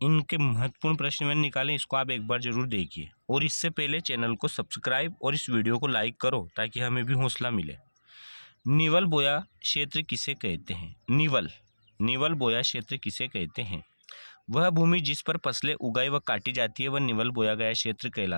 इनके महत्वपूर्ण प्रश्न मैंने निकाले, इसको आप एक बार जरूर देखिए। और इससे पहले चैनल को सब्सक्राइब और इस वीडियो को लाइक करो ताकि हमें भी हौसला मिले। निवल बोया क्षेत्र किसे कहते हैं? निवल बोया क्षेत्र किसे कहते हैं? वह भूमि जिस पर फसलें उगाई व काटी जाती है वह निवल बोया गया क्षेत्र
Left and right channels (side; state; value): both; inverted; correlation -1.00